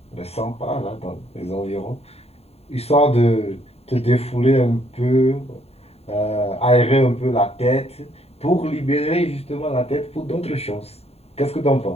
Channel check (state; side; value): late; right; 0.30 ms